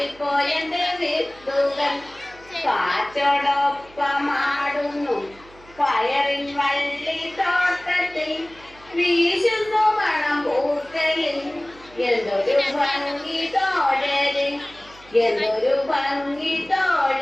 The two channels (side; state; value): right; noise; hum, 24 dB below the sound